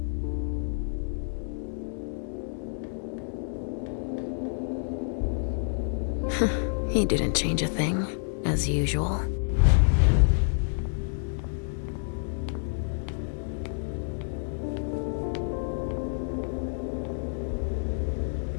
He didn't change a thing, as usual.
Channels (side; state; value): right; silent; digital silence